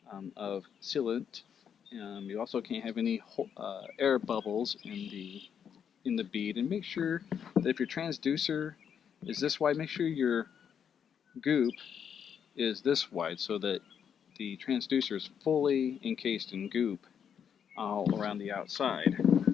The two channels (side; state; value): right; quieter; 7.9 dB